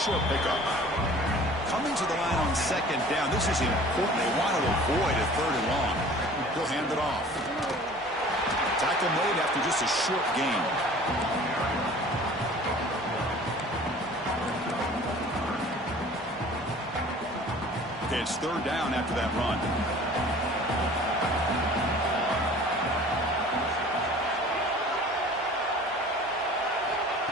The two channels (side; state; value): both; normal; correlation 0.46